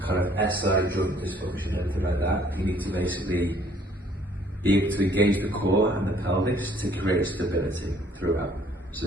kind of SI joint dysfunction, anything like that, you need to basically be able to engage the core and the pelvis to create stability throughout. So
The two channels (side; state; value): both; normal; correlation 0.61